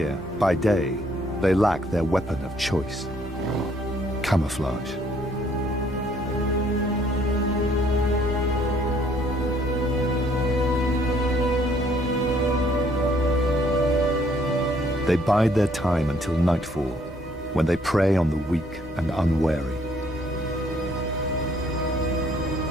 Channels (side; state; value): both; normal; correlation 0.64